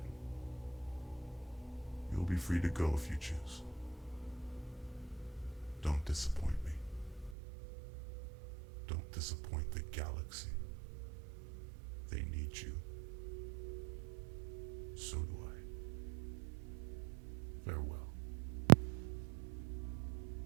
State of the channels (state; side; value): drops out; left; at 7.4 s